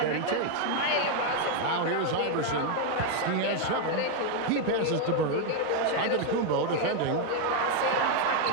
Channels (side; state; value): both; different; correlation 0.01